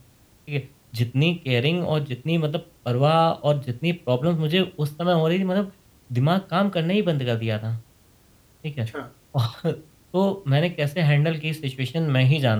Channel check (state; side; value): identical; both; correlation 1.00